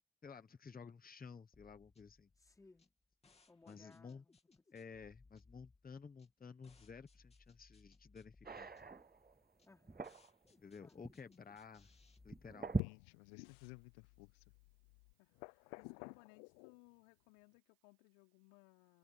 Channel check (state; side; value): drops out; right; at 12.8 s